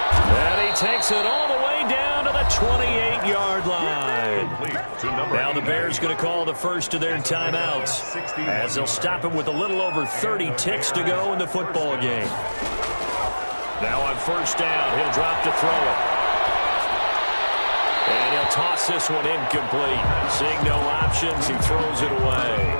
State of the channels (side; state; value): both; inverted; correlation -1.00